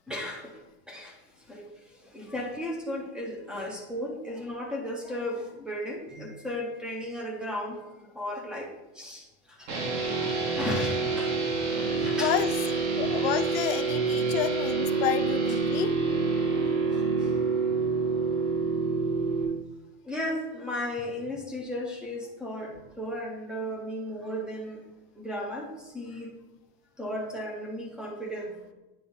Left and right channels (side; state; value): both; normal; correlation 0.32